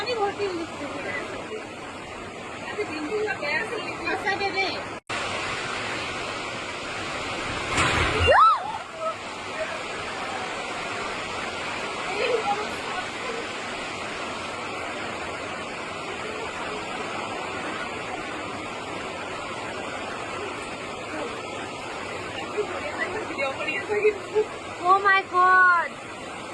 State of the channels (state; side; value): identical; both; correlation 1.00